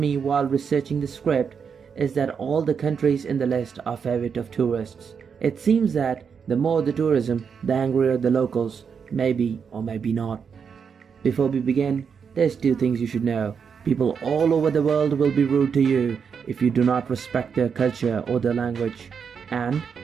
while researching the script is that all the countries in the list are favorite of tourists. It seems that the more the tourism, the angrier the locals, maybe or maybe not. Before we begin, there's two things you should know. People all over the world will be rude to you if you do not respect their culture or their language. And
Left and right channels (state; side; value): quieter; left; 6.5 dB